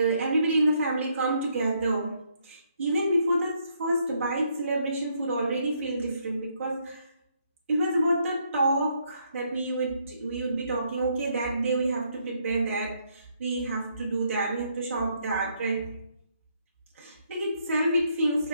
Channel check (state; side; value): inverted; both; correlation -0.72